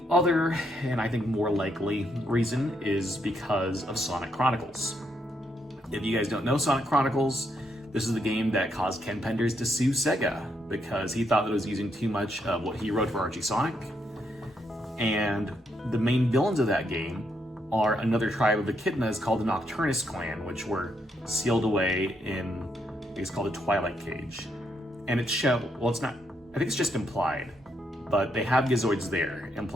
other, and I think more likely, reason is because of Sonic Chronicles. If you guys don't know Sonic Chronicles, this is the game that caused Ken Penders to sue Sega because he thought that it was using too much of what he wrote for Archie Sonic. And the main villains of that game are another tribe of echidnas called the Nocturnus clan, which were sealed away in, I think it's called the Twilight Cage. And it's well, it's not, I think it's just implied, but they have Gizoids there,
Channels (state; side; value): normal; both; correlation 0.77